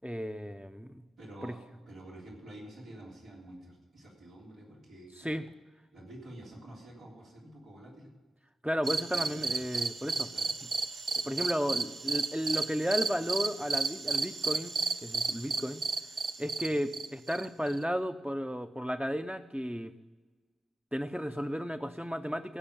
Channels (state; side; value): normal; both; correlation 0.94